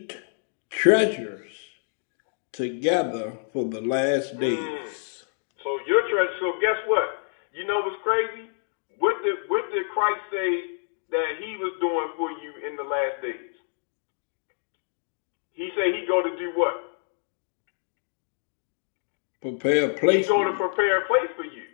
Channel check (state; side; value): silent; right; digital silence